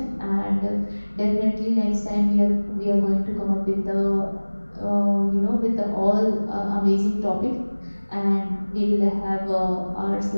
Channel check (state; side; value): inverted; both; correlation -1.00